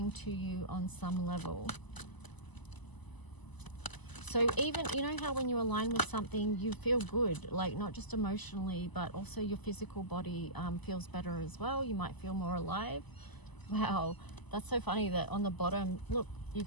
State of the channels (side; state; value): right; late; 1.0 ms